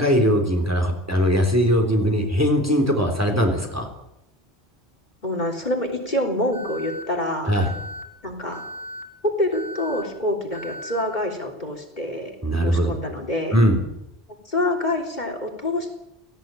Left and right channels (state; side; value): normal; both; correlation 0.37